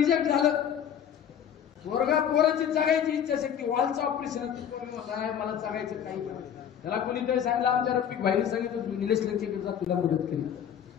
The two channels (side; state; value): right; quieter; 8.9 dB